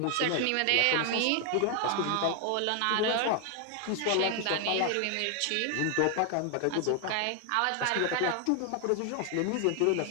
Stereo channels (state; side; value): different; both; correlation 0.00